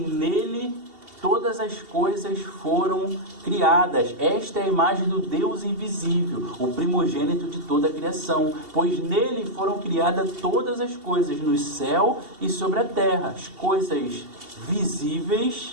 todas as coisas foram criadas. Esta é a imagem do Deus invisível, o primogênito de toda a criação, pois nele foram criadas todas as coisas no céu e sobre a terra, as coisas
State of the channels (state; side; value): late; left; 2.7 ms